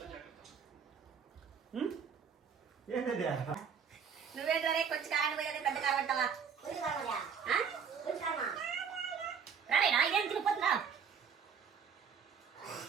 నువ్వేంటే కొంచెం కారం పోయేది పెద్ద కారం అంటావా? రాలేనా ఇదేం తిరిగిపోతుందా?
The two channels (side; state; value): left; quieter; 6.8 dB